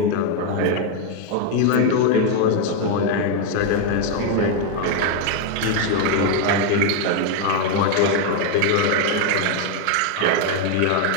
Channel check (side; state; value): both; different; correlation 0.01